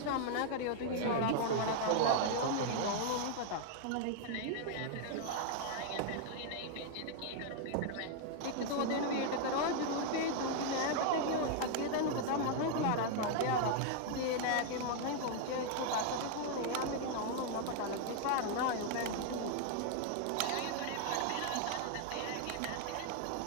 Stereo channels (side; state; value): both; different; correlation 0.00